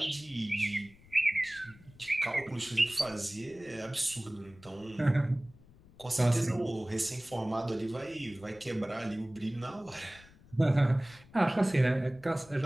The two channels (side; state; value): left; noise; rumble, 24 dB below the sound